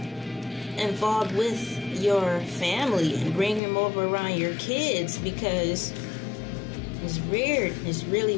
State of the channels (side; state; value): right; drops out; at 3.6 s